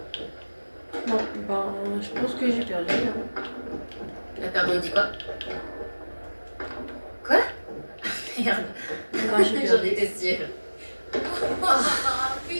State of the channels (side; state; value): both; inverted; correlation -1.00